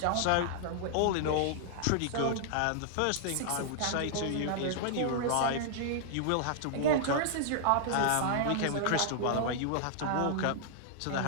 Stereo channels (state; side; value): different; both; correlation -0.01